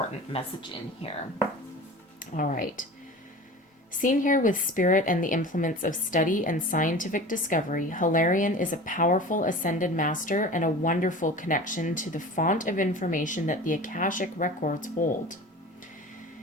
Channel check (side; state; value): both; normal; correlation 0.36